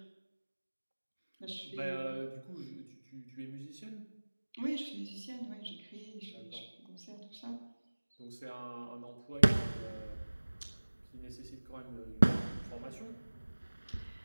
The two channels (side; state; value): both; inverted; correlation -1.00